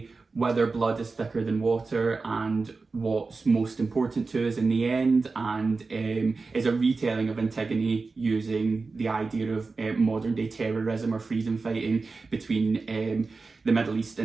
whether blood is thicker than water, and what's most important to us in the end, and is a retelling of Antigone using the idea of modern day terrorism or freedom fighting between the Middle East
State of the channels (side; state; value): left; quieter; 4.0 dB